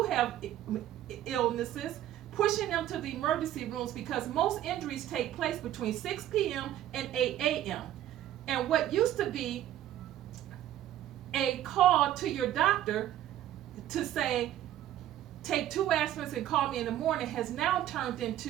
have illnesses, pushing them to the emergency rooms because most injuries take place between 6 p.m. and 8 a.m. And what used to be a call to your doctor to say, take 2 aspirins and call me in the morning, has now turned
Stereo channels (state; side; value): quieter; left; 12.4 dB